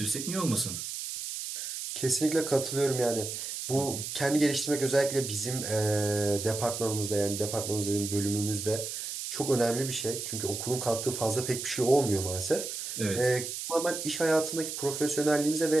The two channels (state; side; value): noise; right; hiss, 6 dB below the sound